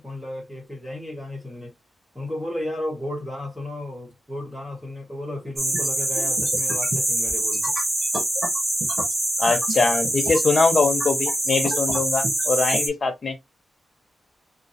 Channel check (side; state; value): both; normal; correlation 0.87